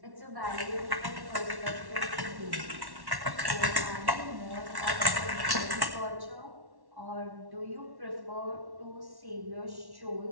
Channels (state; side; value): late; left; 1.1 ms